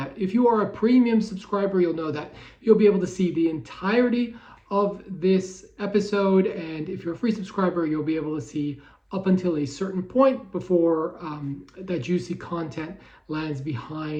If you are a premium subscriber, you'll know that you'll be able to see the entirety of this episode, and if you're a free subscriber, you'll be able to see up until a certain point before that juicy content lands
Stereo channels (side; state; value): both; identical; correlation 1.00